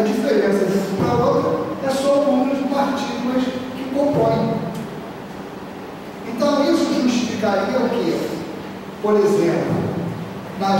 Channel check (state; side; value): identical; both; correlation 1.00